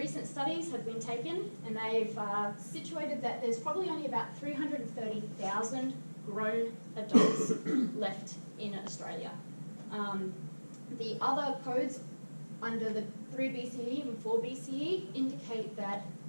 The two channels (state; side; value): inverted; both; correlation -1.00